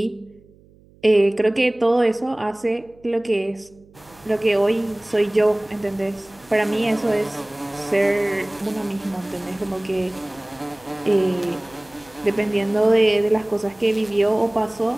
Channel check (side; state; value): right; noise; hum, 28 dB below the sound